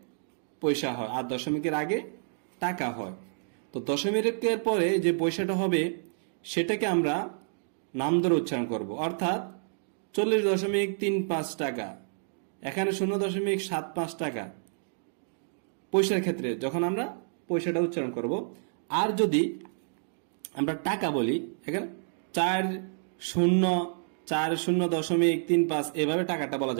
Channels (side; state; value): left; silent; digital silence